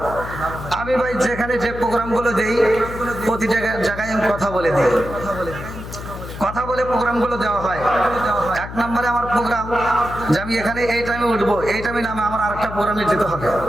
আমি ভাই যেখানে যে প্রোগ্রামগুলো দেই প্রতি জায়গায় আমি কথা বলে দিই, কথা বলে প্রোগ্রামগুলো দেওয়া হয়। এক নম্বরে আমার প্রোগ্রাম যে আমি এখানে এই টাইমে উঠবো, এই টাইমে নামে আমার আরেকটা প্রোগ্রামে যেতে হবে।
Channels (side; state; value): left; noise; hum, 10 dB below the sound